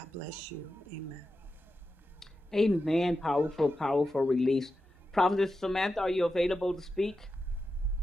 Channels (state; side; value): normal; both; correlation 0.90